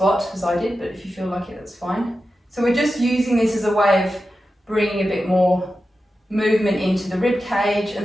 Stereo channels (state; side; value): normal; both; correlation 0.92